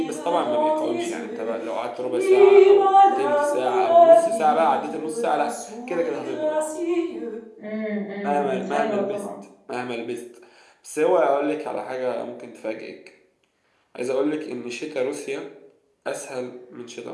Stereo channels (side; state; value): both; identical; correlation 1.00